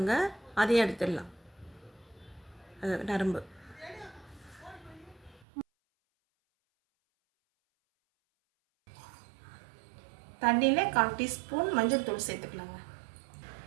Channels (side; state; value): left; drops out; at 5.5 s